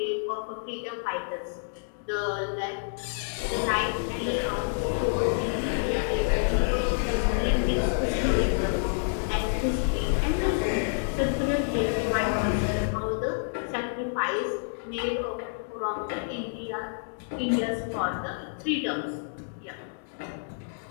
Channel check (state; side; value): silent; right; digital silence